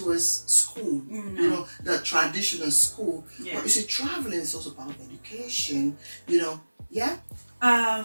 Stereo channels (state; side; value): inverted; both; correlation -1.00